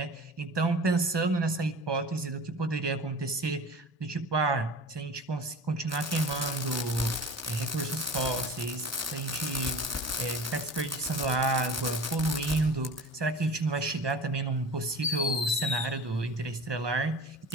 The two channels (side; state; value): both; normal; correlation 0.38